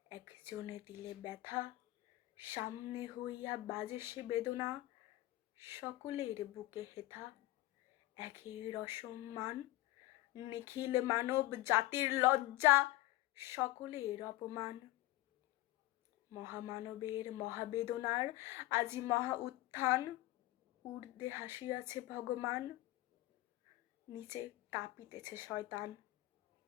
একজনে দিলে ব্যথা, সামনে হইয়া বাজে সে বেদনা, সকলের বুকে হেথা একের অসম্মান। নিখিল মানব জাতির লজ্জা, সকলের অপমান। মহামানবের মহাবেদনার আজি মহা উত্থান, ঊর্ধ্বে হাসিয়াছে ভগবান, নিচে কাঁপিতেছে শয়তান।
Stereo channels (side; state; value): right; quieter; 17.7 dB